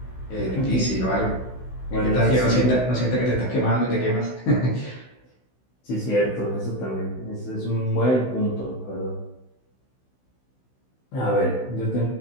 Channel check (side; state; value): right; late; 16 ms